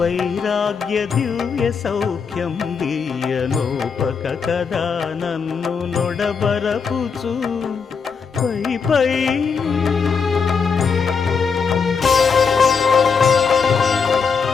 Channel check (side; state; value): right; quieter; 5.7 dB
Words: దివ్య సౌఖ్యం దీయనోపక కదా నన్ను నొడబరపుచు పై పై